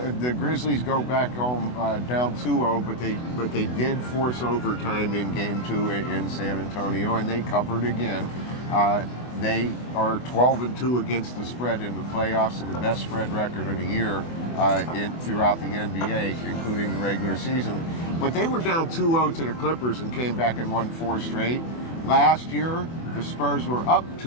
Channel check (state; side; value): late; right; 24 ms